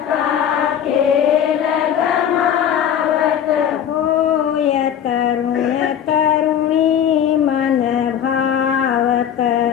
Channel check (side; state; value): right; quieter; 9.3 dB